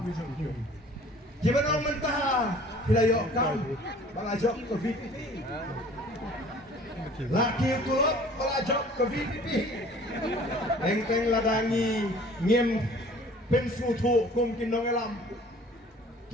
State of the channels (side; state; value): both; normal; correlation 0.50